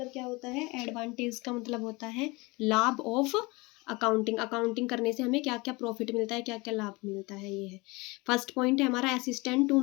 क्या होता है? एडवांटेज का मतलब होता है लाभ ऑफ अकाउंटिंग। अकाउंटिंग करने से हमें क्या क्या प्रॉफिट मिलता है, क्या क्या लाभ मिलता है, ये है। फर्स्ट पॉइंट है हमारा assistant to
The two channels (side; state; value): right; quieter; 24.8 dB